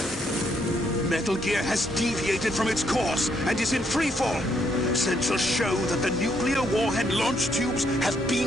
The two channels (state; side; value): normal; both; correlation 0.73